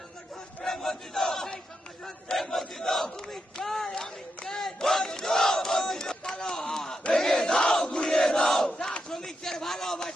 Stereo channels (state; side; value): normal; both; correlation 0.85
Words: তুমি চাই আমি চাই ভেঙে দাও ঘুরিয়ে দাও শ্রমিকদের